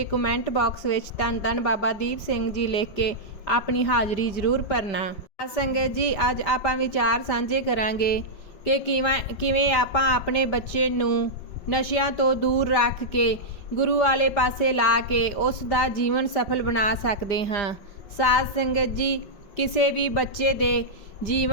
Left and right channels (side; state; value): right; late; 5.0 ms